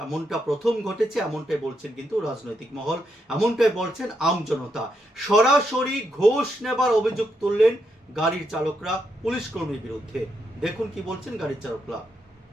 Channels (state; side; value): normal; both; correlation 0.80